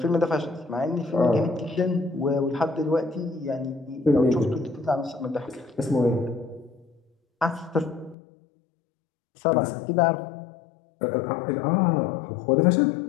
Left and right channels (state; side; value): drops out; right; at 8.2 s